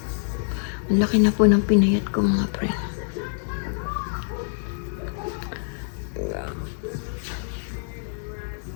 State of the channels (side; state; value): right; silent; digital silence